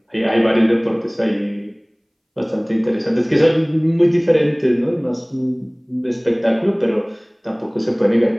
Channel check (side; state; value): both; identical; correlation 1.00